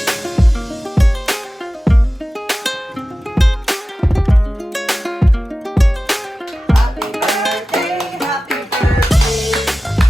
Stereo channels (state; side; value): normal; both; correlation 0.95